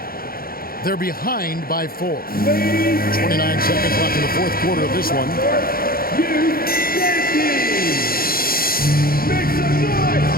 They're behind by 4. 29 seconds left in the fourth quarter of this one. Make some noise!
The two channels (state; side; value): late; right; 0.43 ms